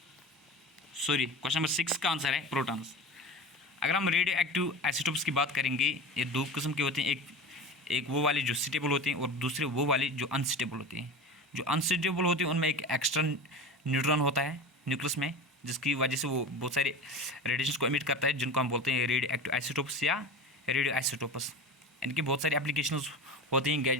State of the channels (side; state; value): both; normal; correlation 0.31